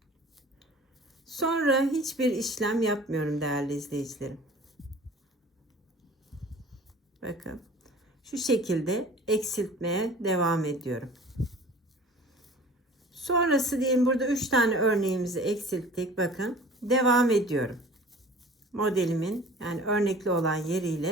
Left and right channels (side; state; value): both; normal; correlation 0.44